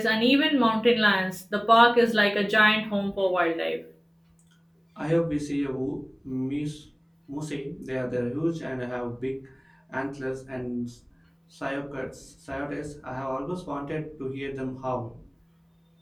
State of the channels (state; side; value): identical; both; correlation 1.00